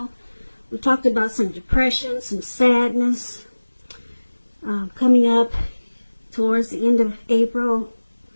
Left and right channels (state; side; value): inverted; both; correlation -1.00